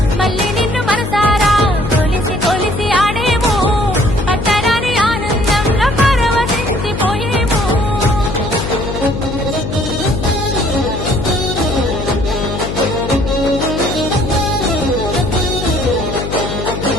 మళ్ళీ నిన్ను మనసారా కొలిసి కొలిసి ఆడేము పట్టరాని ఆనందంలో పరవశించిపోయేము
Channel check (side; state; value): left; noise; hum, 6 dB below the sound